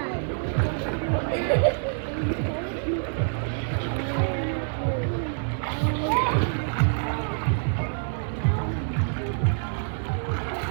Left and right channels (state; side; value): silent; left; 61 dB below the other